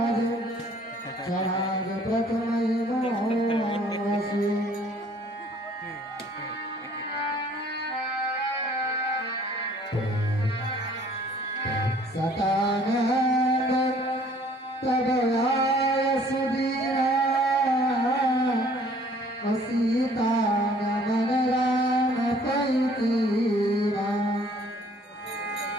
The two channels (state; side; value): normal; both; correlation 0.57